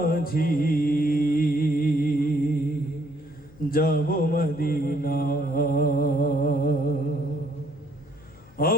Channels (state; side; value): noise; left; hum, 25 dB below the sound